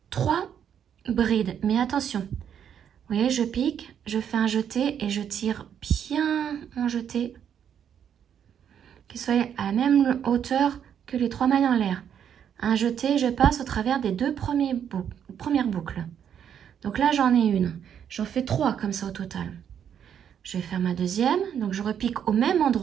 3 brides. Mais attention, vous voyez, je pique, je fais un jeté et je tire bien mon jeté, qu'il soit à la même hauteur que les 3 mailles en l'air. Un jeté, je passe au travers des 2 premières boucles. Donc là, j'en ai une. J'en fais 3 comme ça au total. Je vais faire ma deuxième, donc je repique au même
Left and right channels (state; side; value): quieter; left; 8.7 dB